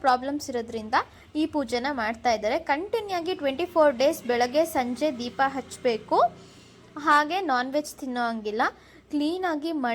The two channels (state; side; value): identical; both; correlation 1.00